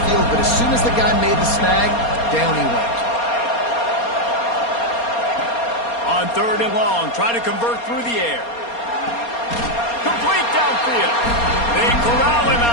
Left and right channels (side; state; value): right; late; 4.3 ms